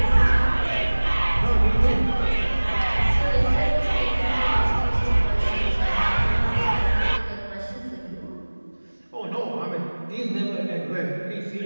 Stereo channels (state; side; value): inverted; both; correlation -1.00